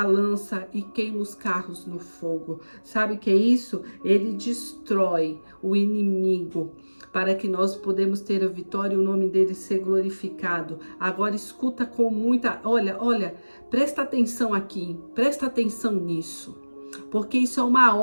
a lança e queima os carros no fogo. Sabe o que é isso? Ele destrói o inimigo para que nós podemos ter a vitória e o nome dele ser glorificado. Agora escuta com muita... Olha, presta atenção aqui, presta atenção nisso. Porque isso é uma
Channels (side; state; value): both; inverted; correlation -1.00